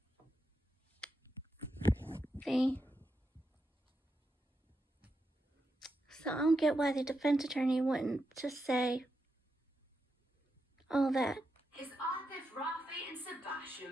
so I don't get why the defense attorney wouldn't just say all that. Is Arthur Rafe and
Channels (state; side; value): normal; both; correlation 0.85